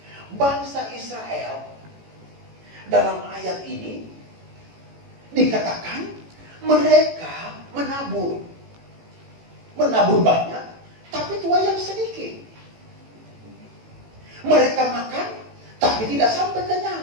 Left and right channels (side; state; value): left; late; 18 ms